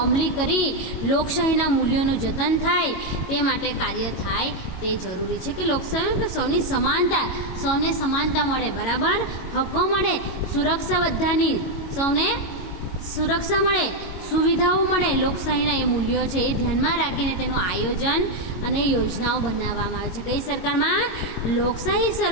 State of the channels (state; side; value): late; right; 22 ms